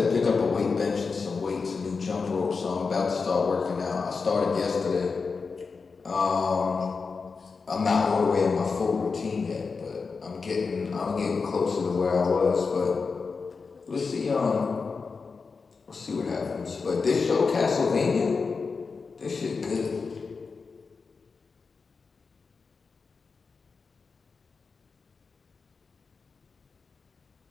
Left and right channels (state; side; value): quieter; right; 4.8 dB